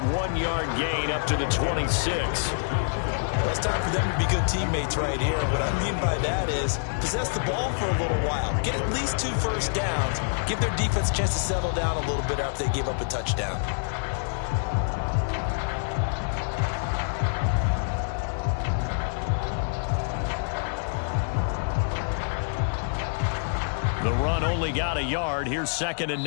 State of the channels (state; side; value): silent; right; digital silence